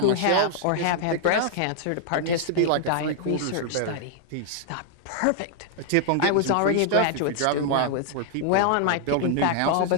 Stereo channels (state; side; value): different; both; correlation 0.00